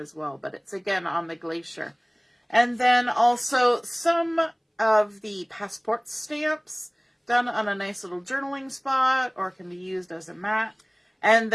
well, but it's again on the glacier. And then also some of the passport stamps done on a nice little journaling spot or can be used as a mat. And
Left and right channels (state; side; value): identical; both; correlation 1.00